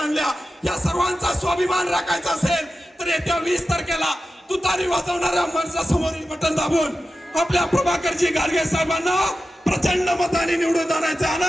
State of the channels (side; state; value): both; normal; correlation 0.93